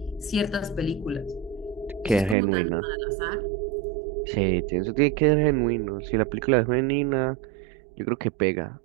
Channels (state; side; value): drops out; left; at 2.4 s